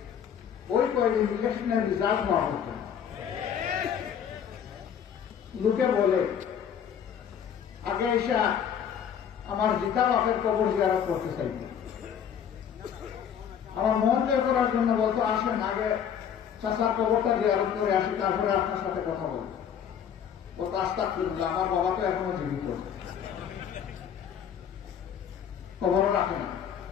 ওই কয়েকদিন ইলেকশনের রেজাল্ট হওয়া হতো। লোকে বলে আগে এসে আমার জিতা বাপের কবর জিয়ারত করতে চাই, আমার মন জয় করার জন্য বলতো আসেন আগে চাচার কবরটা জিয়ারত করে আসি, তারপরে আপনার সাথে কথা বলবো। ও কাজটা করল, আমার বাবা তো এখনো জীবিত, কবরও রাখে না,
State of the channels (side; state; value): right; quieter; 8.4 dB